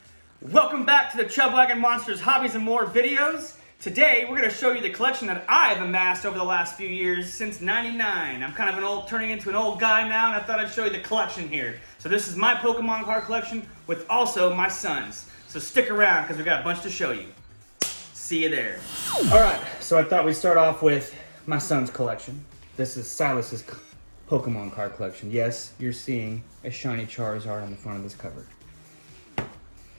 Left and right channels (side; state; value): both; inverted; correlation -1.00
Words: Welcome back to the Chubwagon Monsters Hobbies and More videos. Today we're going to show you the collection that I've amassed over the last few years since '99. I'm kind of turning into an old guy now, and I thought I'd show you the collection here. So this is my Pokemon card collection with also my son's. So stick around because we got a bunch to show you. See you there. Alright, so I thought we'd start off with my son's collection. This is Silas's Pokemon card collection. Yes, you're seeing a shiny Charizard on the front of this cover.